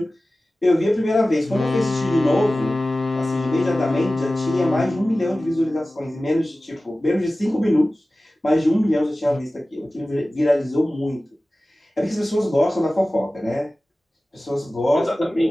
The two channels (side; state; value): both; normal; correlation 0.96